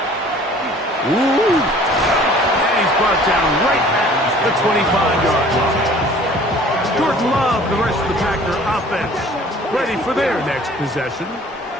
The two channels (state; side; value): normal; both; correlation 0.51